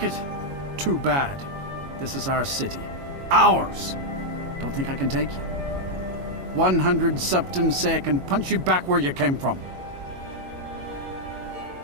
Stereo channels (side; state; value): left; late; 22 ms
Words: it? Too bad. This is our city. Ours! Don't think I can take you? 100 septims say I can punch you back where you came from.